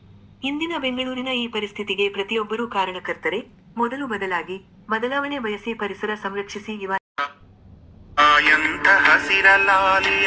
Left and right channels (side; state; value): both; identical; correlation 1.00